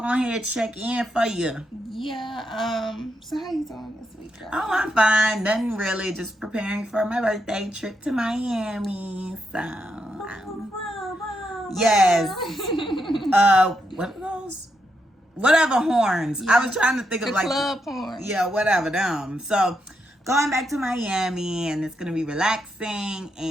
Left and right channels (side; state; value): both; normal; correlation 0.81